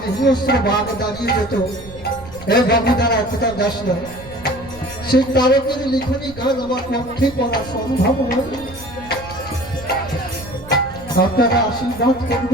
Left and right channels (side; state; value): right; noise; rumble, 17 dB below the sound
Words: হিংস্র বাঘ দাঁড়িয়ে যেত, এ বাবুদারা কোথা যাস না, সেই তারকের লিখনী গান আমার পক্ষে পড়া সম্ভব নয়। আপনারা আশীর্বাদ